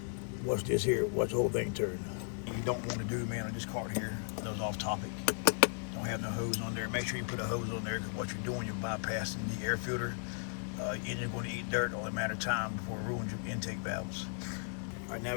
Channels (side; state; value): right; silent; 54 dB below the other